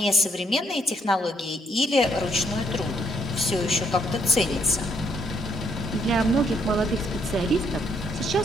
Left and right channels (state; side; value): normal; both; correlation 0.71